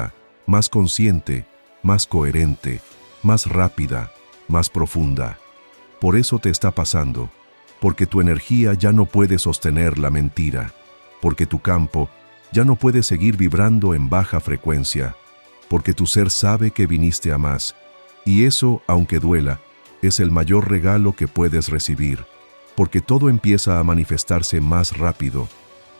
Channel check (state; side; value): inverted; both; correlation -1.00